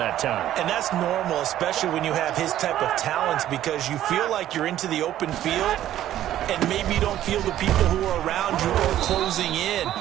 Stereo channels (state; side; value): quieter; left; 12.5 dB